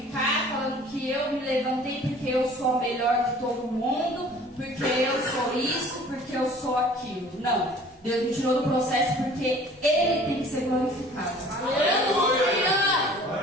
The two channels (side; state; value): both; normal; correlation 0.49